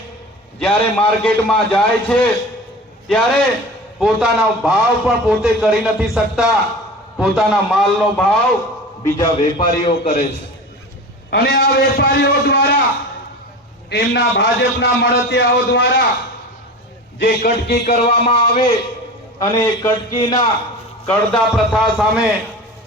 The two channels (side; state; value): both; normal; correlation 0.33